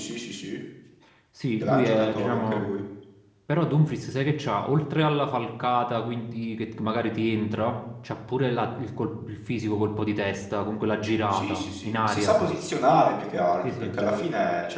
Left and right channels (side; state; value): both; identical; correlation 1.00